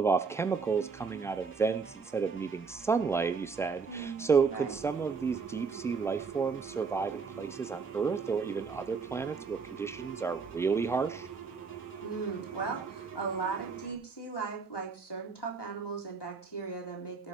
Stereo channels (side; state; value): left; quieter; 5.1 dB